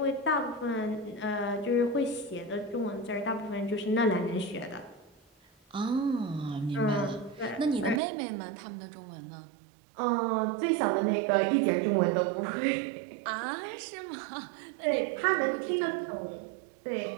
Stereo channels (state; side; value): drops out; left; at 8.0 s